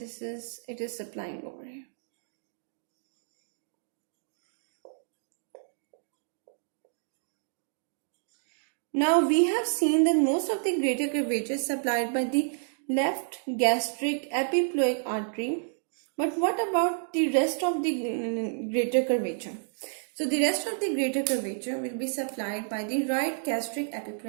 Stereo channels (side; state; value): left; silent; digital silence